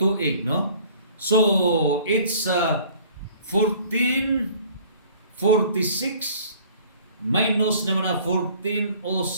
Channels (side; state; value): both; inverted; correlation -0.52